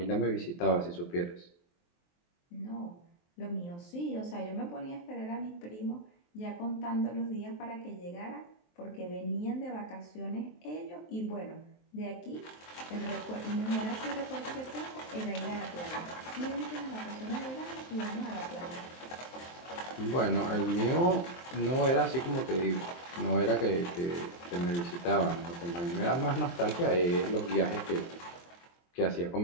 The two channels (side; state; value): right; late; 23 ms